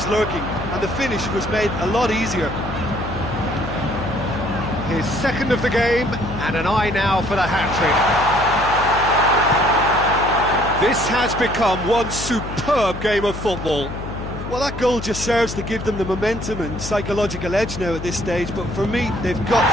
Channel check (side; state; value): left; noise; hum, 9 dB below the sound